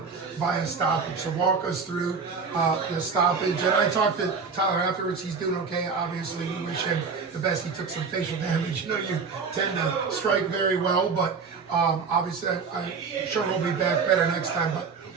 by a stoppage. So walk us through the stoppage. And I talked to Tyler afterwards. He's doing okay. Obviously, we wish him the best. He took some facial damage. You know, you tend to strike very well, but obviously, I'm sure he'll be back better next time. But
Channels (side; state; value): left; quieter; 5.2 dB